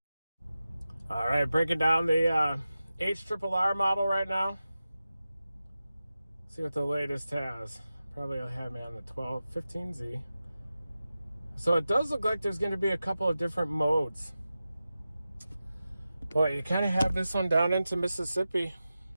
All right, breaking down the HRRR model right now. See what the latest has. Probably I'll have me on the 1215Z. So it does look like there's going to be a couple of different modes. Boy, you kind of have this one down into Mississippi.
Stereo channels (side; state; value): both; inverted; correlation -0.93